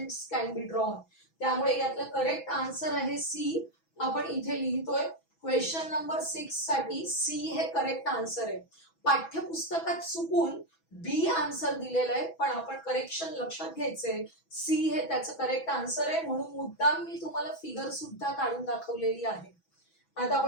कॅन बी ड्रॉन. त्यामुळे यातलं करेक्ट आन्सर आहे सी. आपण इथे लिहितोय क्वेश्चन नंबर 6 साठी सी हे करेक्ट आन्सर आहे. पाठ्यपुस्तकात चुकून बी आन्सर दिलेलं आहे, पण आपण करेक्शन लक्षात घ्यायचंय. सी हे त्याचं करेक्ट आन्सर आहे, म्हणून मुद्दाम मी तुम्हाला फिगर सुद्धा काढून दाखवलेली आहे. आता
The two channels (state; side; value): late; right; 6.1 ms